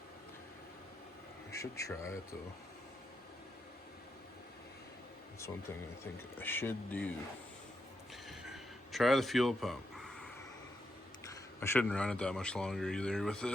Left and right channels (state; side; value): normal; both; correlation 0.83